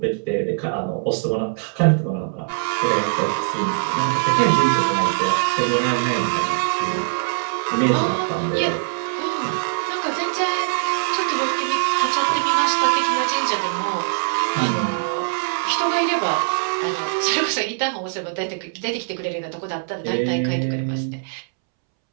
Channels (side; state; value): left; silent; 64 dB below the other